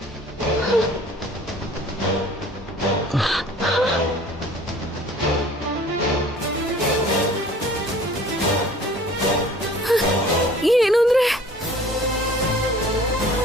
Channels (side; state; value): both; normal; correlation 0.49